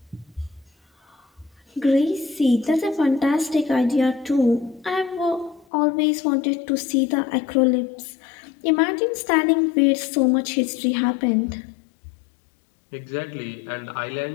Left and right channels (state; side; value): drops out; right; at 5.7 s